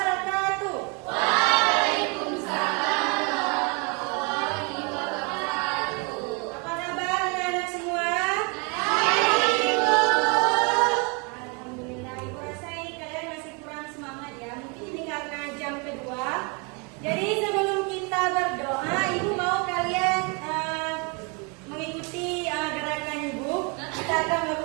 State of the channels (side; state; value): left; quieter; 31.7 dB